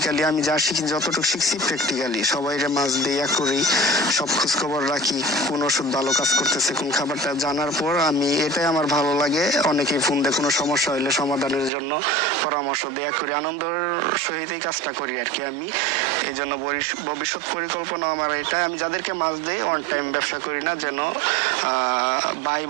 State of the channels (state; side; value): drops out; left; at 11.7 s